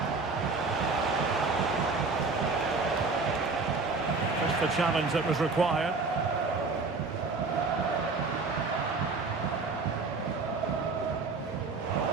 Just the challenge that was required.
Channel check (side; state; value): left; quieter; 4.1 dB